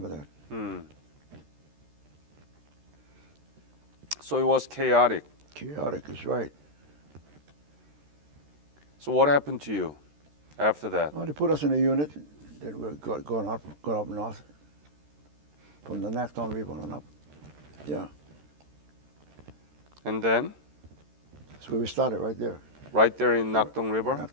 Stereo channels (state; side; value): late; left; 13 ms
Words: that. Hmm. So it was chaotic. Chaotic is right. So what happened to you after that? Well, they put us in a unit. Then we going up north from the Nakton River on up. Yeah. And then? That's where we started, right there. Right there in Nakdong River?